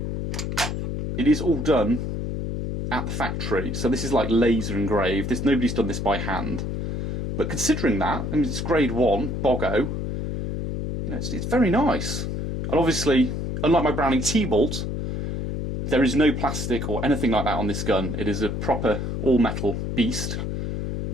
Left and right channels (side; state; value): left; noise; hum, 3 dB below the sound